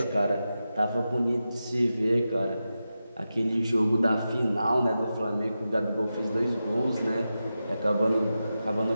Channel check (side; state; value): both; inverted; correlation -0.91